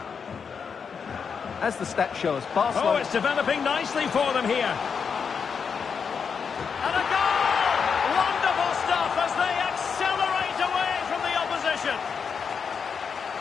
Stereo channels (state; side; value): quieter; right; 6.2 dB